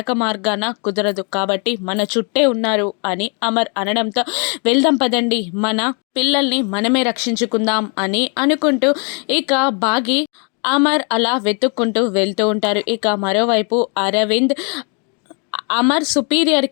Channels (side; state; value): right; quieter; 36.8 dB